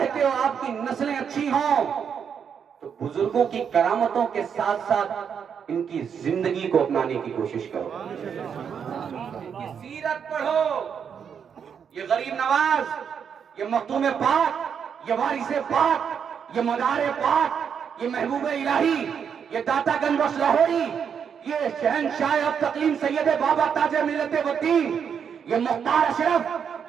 ہو آپ کی نسلیں اچھی ہوں تو بزرگوں کی کرامتوں کے ساتھ ساتھ ان کی زندگی کو اپنانے کی کوشش کرو, ان کی سیرت پڑھو. یہ غریب نواز, یہ مختوم پاک, یہ وارث پاک, یہ مدار پاک, یہ محبوب الہی, یہ داتا گنج بخش لاہوری, یہ شہنشاہ اب تقلیم سید بابا تاج ملت والدین, یہ مختار اشرف,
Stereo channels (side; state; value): left; quieter; 7.3 dB